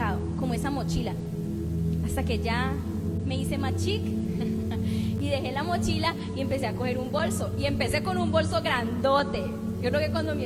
como esa mochila, hasta que ya me hice más chic y dejé la mochila y empecé a coger un bolso. Y empecé con un bolso grandote. Yo creo que cuando mi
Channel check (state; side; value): identical; both; correlation 1.00